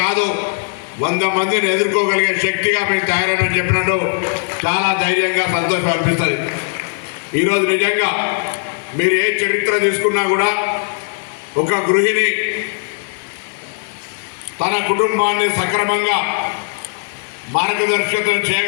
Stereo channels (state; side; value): silent; right; digital silence